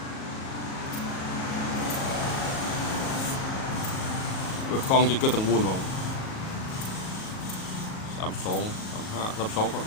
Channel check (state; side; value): late; right; 37 ms